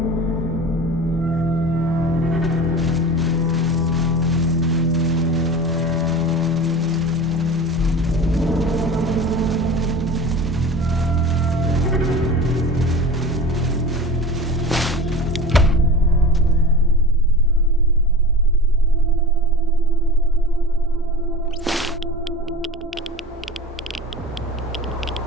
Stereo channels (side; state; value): both; normal; correlation 0.34